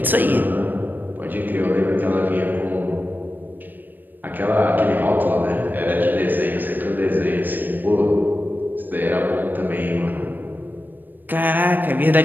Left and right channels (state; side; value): late; left; 0.090 ms